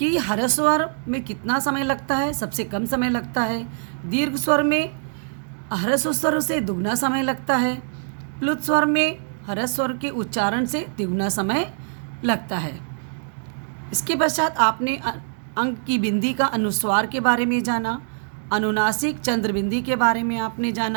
ह्रस्व स्वर में कितना समय लगता है, सबसे कम समय लगता है। दीर्घ स्वर में ह्रस्व स्वर से दुगना समय लगता है। प्लुत स्वर में ह्रस्व स्वर के उच्चारण से तिगुना समय लगता है। इसके पश्चात आपने अंक की बिंदी का अनुस्वार के बारे में जाना, अनुनासिक चंद्र बिंदी के बारे में आपने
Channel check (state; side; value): silent; left; digital silence